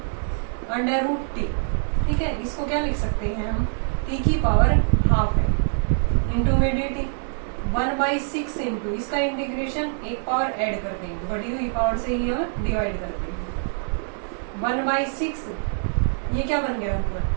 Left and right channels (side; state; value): left; silent; digital silence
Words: अंडर रूट t। ठीक है, इसको क्या लिख सकते हैं हम, t की पावर हाफ है इंटू में dt, 1/6 इंटू इसका इंटीग्रेशन एक पावर ऐड कर देंगे, बढ़ी हुई पावर से ही हम डिवाइड कर देंगे, 1/6 ये क्या बन गया ऊपर